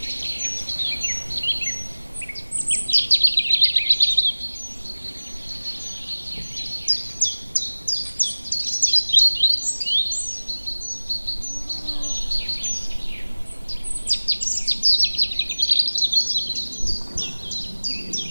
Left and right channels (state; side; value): inverted; both; correlation -1.00